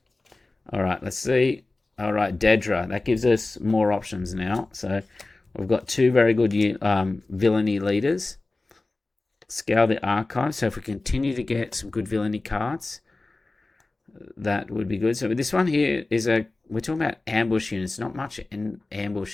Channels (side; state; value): right; quieter; 3.2 dB